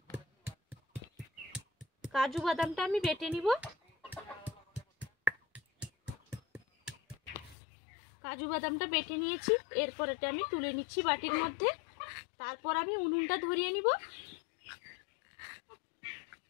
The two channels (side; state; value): right; drops out; at 7.6 s